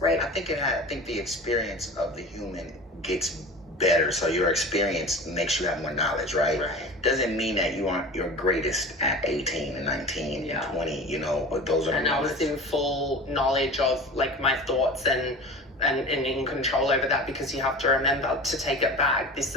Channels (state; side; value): normal; both; correlation 0.35